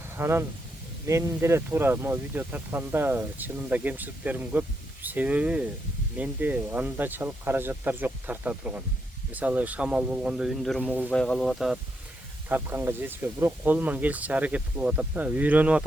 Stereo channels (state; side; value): normal; both; correlation 0.80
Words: Анан мен деле туура могу видео тартканда чынында кемчиликтерим көп. Себеби менде анчалык каражаттар жок тарта турган. Мисалы шамал болгондо үндөрүм угулбай калып атат, тартканга жетишпей, бирок колуман келишинче аракет кылып атам да, үйрөнүп